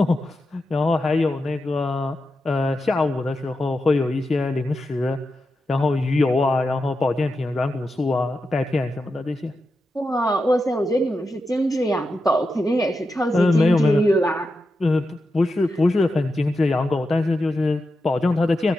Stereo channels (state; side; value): normal; both; correlation 0.89